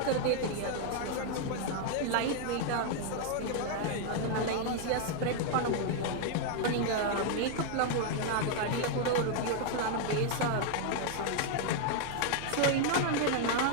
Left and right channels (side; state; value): both; different; correlation 0.00